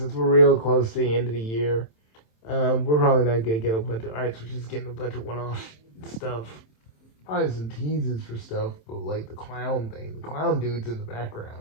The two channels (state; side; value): late; right; 27 ms